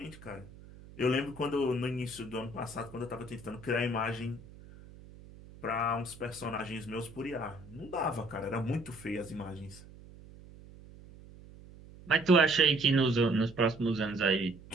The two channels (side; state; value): right; noise; hum, 19 dB below the sound